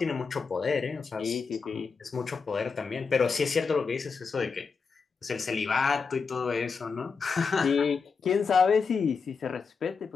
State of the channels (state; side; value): quieter; right; 5.2 dB